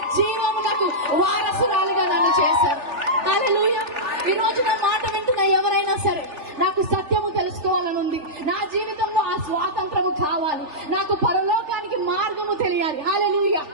జీవమునకు వారసురాలుగా నన్ను చేశారు. హల్లెలూయా. ఈ రోజు నా మాట వింటున్న ఎవరైనా సరే, నాకు సత్యము తెలుసుకోవాలని ఉంది, నా జీవితంలో ఆ స్వాతంత్రము కావాలి, నాకు పరలోకానికి మార్గము తెలియాలి. హల్లెలూయా.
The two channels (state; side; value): late; left; 3.4 ms